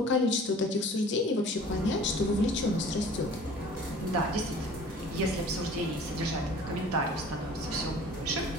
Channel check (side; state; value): both; normal; correlation 0.47